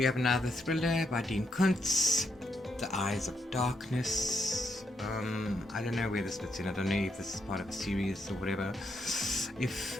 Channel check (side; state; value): both; normal; correlation 0.78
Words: have another thriller by Dean Kuntz, The Eyes of Darkness. I don't know where this fits in. I don't know if this is part of a series or whatever. If